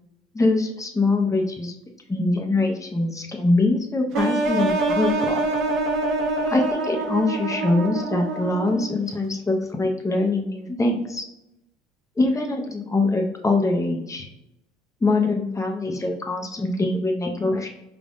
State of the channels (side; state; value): both; normal; correlation 0.71